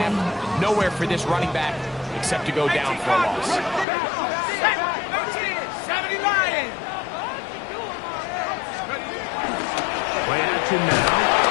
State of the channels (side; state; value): right; drops out; at 3.9 s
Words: Nowhere for this running back except to go down for a loss. 70 Lions! Play action now.